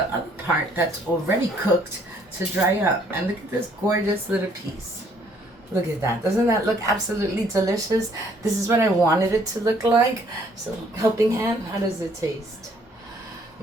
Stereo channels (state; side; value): normal; both; correlation 0.63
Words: other part that's already cooked to dry up. And look at this gorgeous little piece. Look at that. Doesn't that look absolutely delicious? This is what I wanted it to look like. So, helping hand, how does it taste?